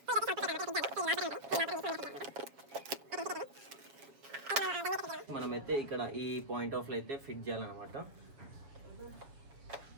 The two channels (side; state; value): left; late; 7.3 ms